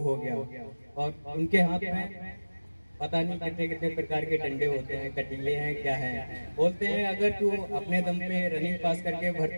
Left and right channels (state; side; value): inverted; both; correlation -1.00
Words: हो गया। और उनके हाथ में पता नहीं कितने कितने प्रकार के डंडे होते हैं, कटीले हैं, क्या है। बोलते हैं अगर तू अपने दम पे रनिंग पास करके